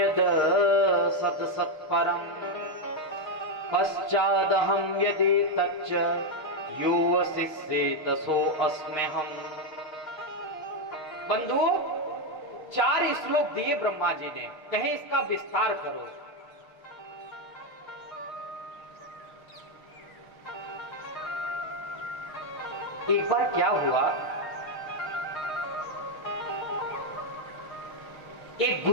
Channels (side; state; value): right; late; 6.4 ms